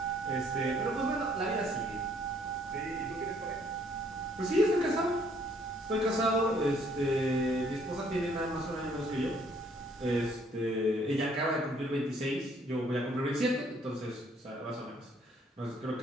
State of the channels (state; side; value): normal; both; correlation 0.64